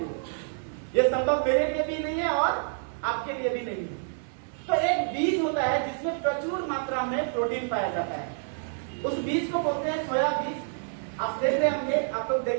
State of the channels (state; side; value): silent; left; digital silence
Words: you. ये संभव मेरे लिए भी नहीं है और आपके लिए भी नहीं है। तो एक बीज होता है जिसमें प्रचुर मात्रा में प्रोटीन पाया जाता है। उस बीज को बोलते हैं सोया बीज। आप देख रहे होंगे, आप लोग